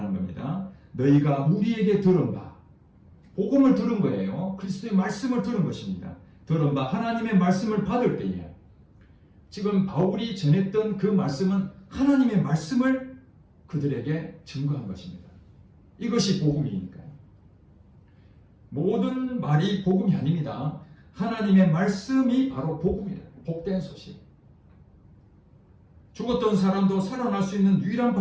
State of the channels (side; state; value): both; identical; correlation 1.00